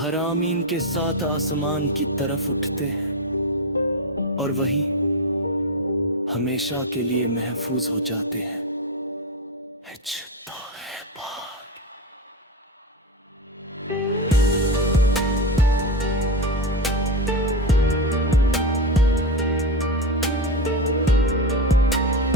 के साथ आसमान की तरफ उठते हैं और वही हमेशा के लिए महफूज हो जाते हैं। तो है बात।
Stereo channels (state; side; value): normal; both; correlation 0.14